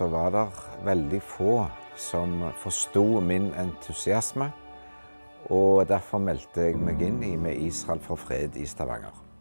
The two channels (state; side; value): inverted; both; correlation -1.00